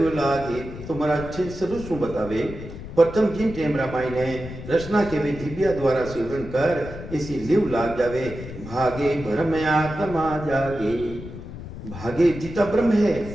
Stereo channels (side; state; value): left; noise; rumble, 11 dB below the sound